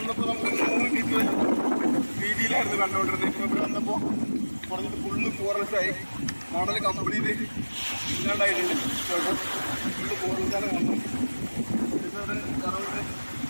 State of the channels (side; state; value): both; inverted; correlation -1.00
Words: നമുക്ക് 100 മീറ്റർ വീതിയിലായിരുന്നു കണ്ടുകൊണ്ടിരുന്നത്. ഇപ്പോൾ ഇവിടെ വന്നപ്പോൾ കുറഞ്ഞിട്ട് ഫുള്ള് ഫോറസ്റ്റായി. മോഡൽ കംപ്ലീറ്റ് ഇല്ലാണ്ടായിട്ടുണ്ട്. ഫുള്ള് ഫോറസ്റ്റാണ് വന്നു.